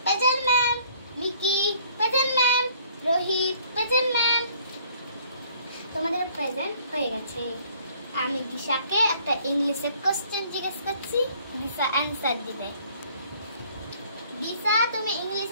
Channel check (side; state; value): both; inverted; correlation -0.58